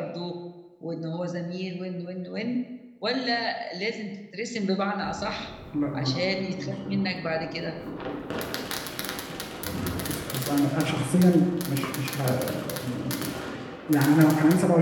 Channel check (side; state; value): both; identical; correlation 1.00